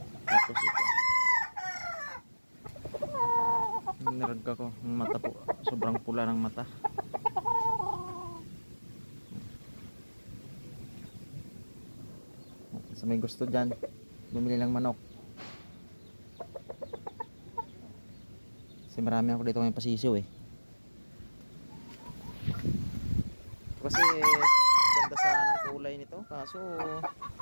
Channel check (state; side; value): inverted; both; correlation -1.00